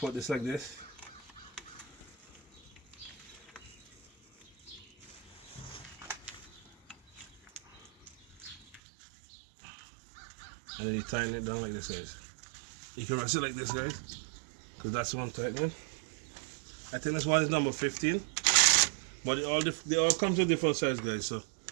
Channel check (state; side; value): drops out; left; at 8.8 s